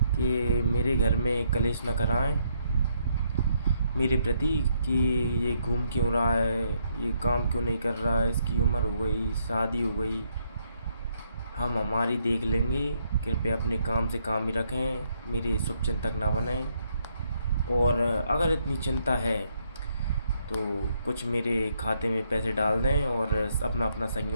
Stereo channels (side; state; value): both; inverted; correlation -0.73